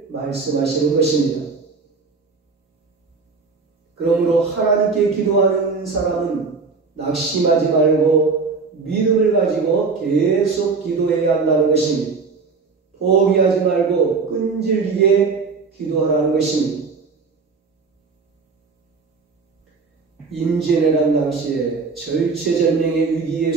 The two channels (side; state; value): left; quieter; 4.7 dB